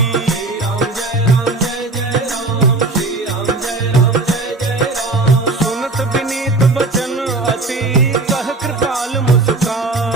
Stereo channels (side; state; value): left; quieter; 3.2 dB